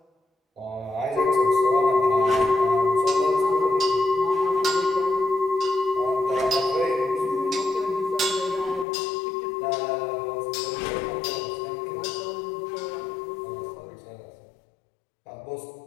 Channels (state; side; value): drops out; right; at 8.8 s